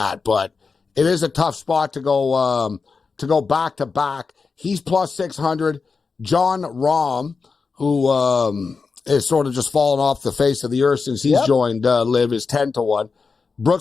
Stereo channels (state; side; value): quieter; right; 4.8 dB